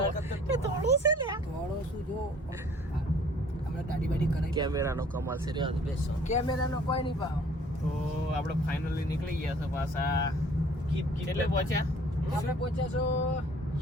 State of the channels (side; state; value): both; normal; correlation 0.54